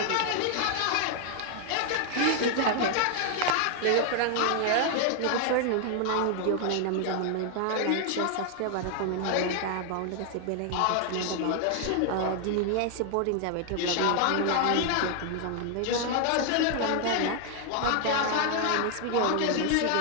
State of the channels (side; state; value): both; different; correlation 0.00